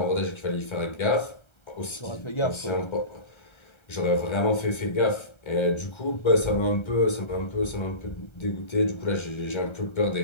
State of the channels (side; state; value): right; late; 1.3 ms